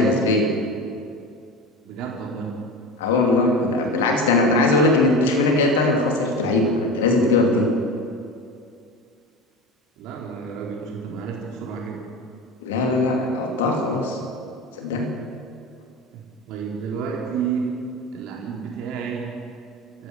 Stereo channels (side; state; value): both; normal; correlation 0.27